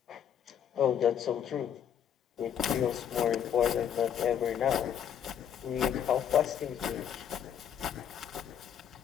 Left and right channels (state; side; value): quieter; right; 9.0 dB